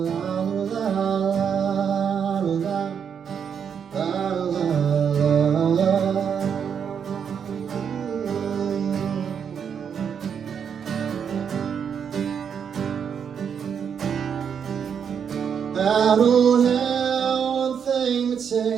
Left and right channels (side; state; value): left; quieter; 7.5 dB